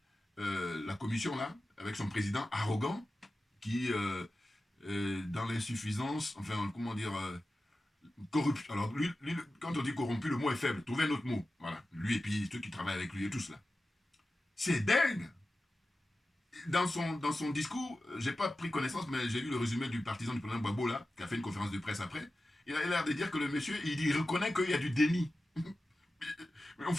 la commission, là, avec son président arrogant, qui, dans l'insuffisance, enfin, comment dire, corruption. Alors, lui, quand on dit corrompu, le mot est faible. Trouvez un autre mot. Voilà. Lui et puis ceux qui travaillent avec lui et tout cela. C'est dingue. Dans son discours, j'ai pas pris connaissance, mais j'ai lu le résumé du partisan du président Gbagbo, là, qui a fait une conférence de presse après. Il a l'air de dire que le monsieur, il reconnaît qu'il y a du déni. Mais on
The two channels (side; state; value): both; normal; correlation 0.94